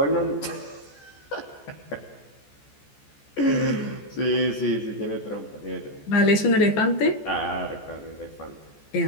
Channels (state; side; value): late; right; 14 ms